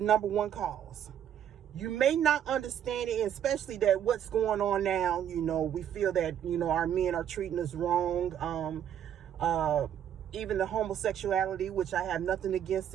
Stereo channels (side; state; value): left; quieter; 9.8 dB